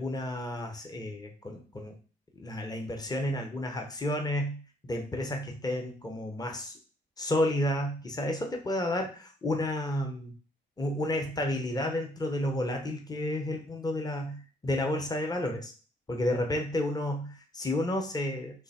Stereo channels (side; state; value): both; normal; correlation 0.68